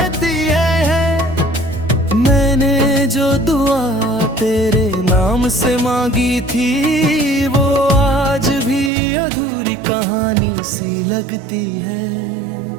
है। मैंने जो दुआ तेरे नाम से मांगी थी, वो आज भी अधूरी कहानी सी लगती है।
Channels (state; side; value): drops out; left; at 8.9 s